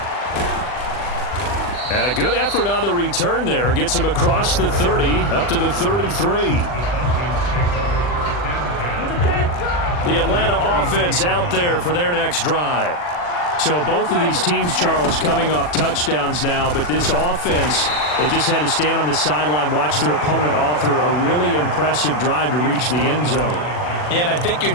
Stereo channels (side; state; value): right; late; 40 ms